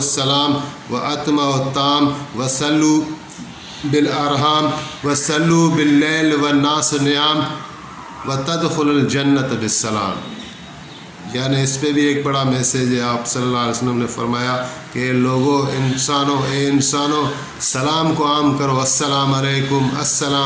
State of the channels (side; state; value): both; identical; correlation 1.00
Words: واتموا الطعام وصلوا بالارحام وصلوا باللیل والناس نیام وتدخلوا الجنۃ بالسلام۔ یعنی اس پہ بھی ایک بڑا میسیج ہے۔ آپ صلی اللہ علیہ وسلم نے فرمایا کہ لوگوں، انسانوں سلام کو عام کرو، السلام علیکم